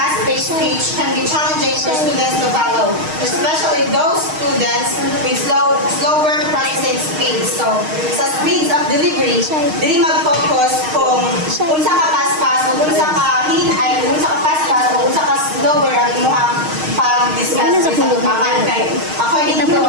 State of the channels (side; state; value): left; late; 6.4 ms